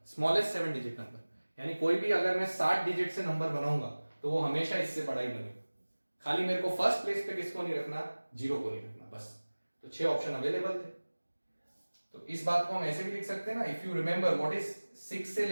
smallest 7 digit number। यानी कोई भी अगर मैं 60 डिजिट से नंबर बनाऊंगा तो वो हमेशा इससे बड़ा ही बनेगा। खाली मेरे को फर्स्ट प्लेस पे किसको नहीं रखना, 0 को नहीं रखना, बस। तो 6 ऑप्शन अवेलेबल थे। तो इस बात को हम ऐसे भी लिख सकते हैं ना, if you remember what is 6 से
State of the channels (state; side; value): inverted; both; correlation -1.00